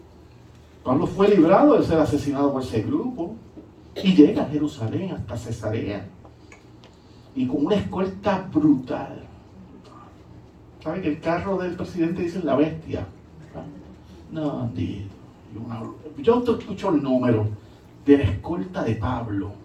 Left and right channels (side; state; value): both; identical; correlation 1.00